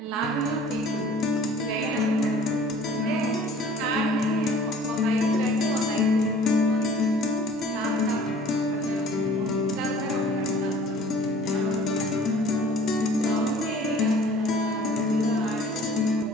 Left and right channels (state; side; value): normal; both; correlation 0.50